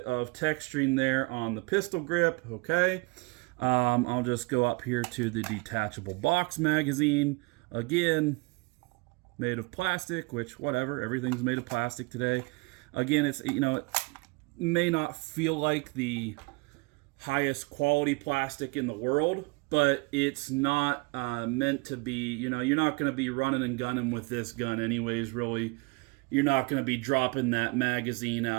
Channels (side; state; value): left; quieter; 27.2 dB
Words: of texturing there on the pistol grip. Okay. I'll just go up here to the detachable box magazine. Again, made of plastic, which whatever, everything's made of plastic today. Again, it's, it may not feel like the highest quality plastic in the world, but it's not meant to be, you're not going to be running and gunning with this gun anyways, really. You're not going to be dropping that magazine